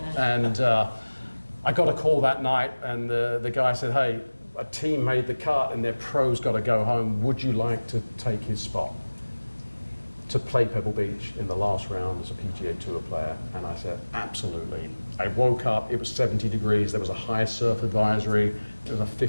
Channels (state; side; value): inverted; both; correlation -1.00